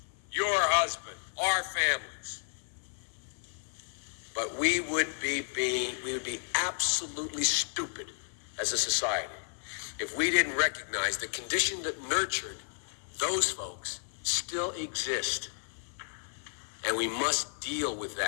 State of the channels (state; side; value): silent; right; 56 dB below the other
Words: your husband, our families. But we would be absolutely stupid as a society if we didn't recognize the condition that nurtured those folks still exist. And we must deal with